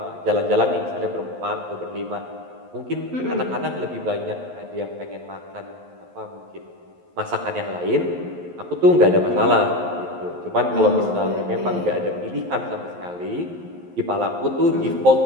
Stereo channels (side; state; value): left; late; 11 ms